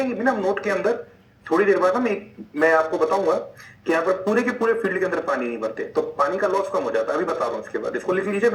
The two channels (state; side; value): identical; both; correlation 1.00